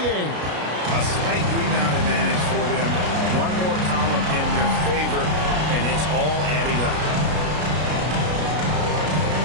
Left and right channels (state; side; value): late; left; 33 ms